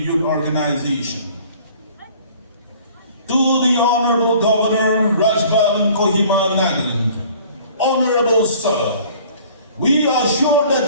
Youth Organization. To the Honorable Governor Rajbhavan Kohima, Nagaland. Honorable Sir, we are sure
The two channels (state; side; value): inverted; both; correlation -0.51